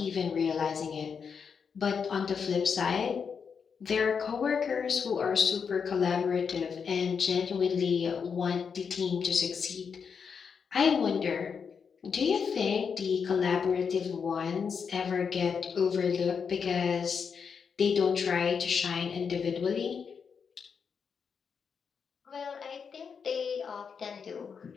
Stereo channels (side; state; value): right; quieter; 6.3 dB